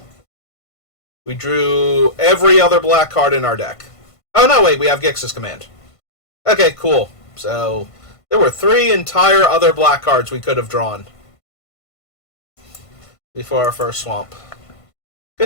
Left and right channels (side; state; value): right; late; 1.5 ms